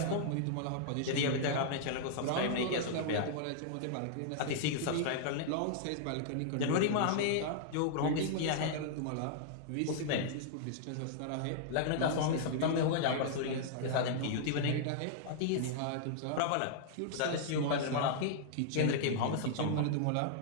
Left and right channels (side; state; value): both; different; correlation -0.01